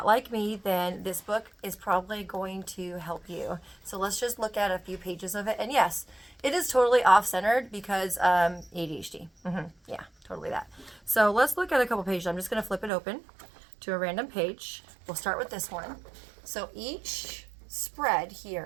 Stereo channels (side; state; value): left; drops out; at 12.9 s